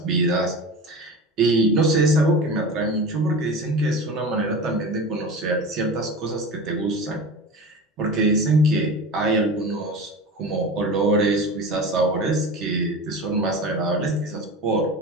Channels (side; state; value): both; normal; correlation 0.31